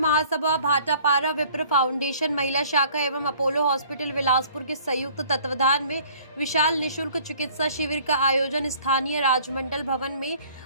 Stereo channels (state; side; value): inverted; both; correlation -0.54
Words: भाटापारा विप्र फाउंडेशन महिला शाखा एवं अपोलो हॉस्पिटल बिलासपुर के संयुक्त तत्वाधान में विशाल निशुल्क चिकित्सा शिविर का आयोजन स्थानीय राजमंडल भवन में